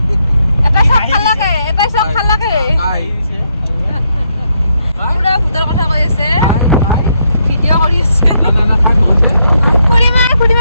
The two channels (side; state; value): both; inverted; correlation -0.77